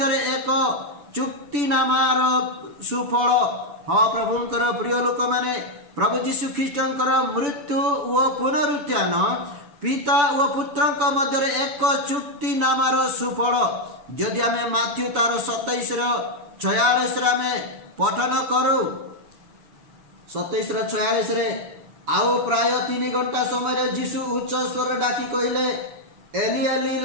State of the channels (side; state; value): left; late; 6.9 ms